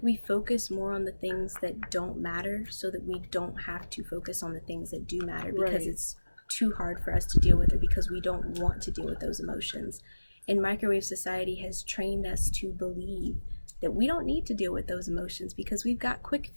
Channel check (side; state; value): both; inverted; correlation -1.00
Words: we focus more on the things that don't matter so that we don't have to focus on the things that do matter, because it's too hard for us to deal with, or because we don't want to deal with those emotions. And microwave society has trained us to believe that we don't need to deal with those emotions because we've got quick